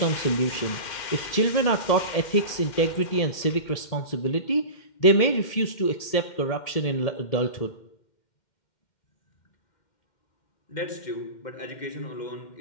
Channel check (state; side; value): late; right; 2.1 ms